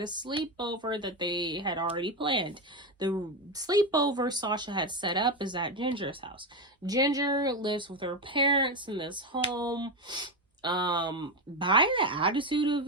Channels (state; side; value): normal; both; correlation 0.13